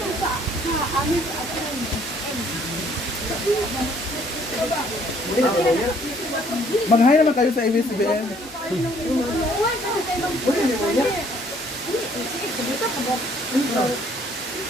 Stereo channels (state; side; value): normal; both; correlation 0.61